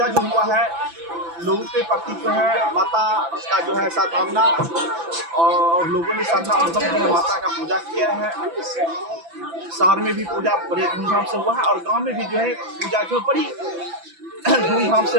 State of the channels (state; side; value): late; left; 5.9 ms